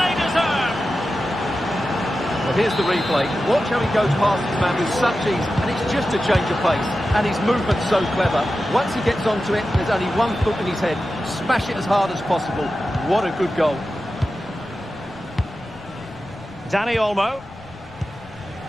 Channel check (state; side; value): noise; left; rumble, 23 dB below the sound